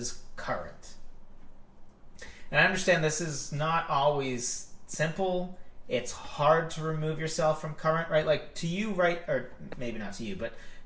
current. And I understand this is not always simple. It's hard to remove yourself from current, right? Like to you, right? Or maybe not to you, but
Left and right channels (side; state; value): both; identical; correlation 1.00